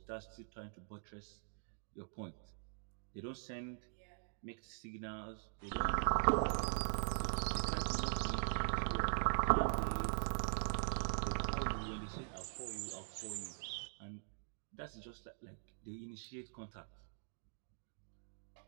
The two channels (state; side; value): silent; left; digital silence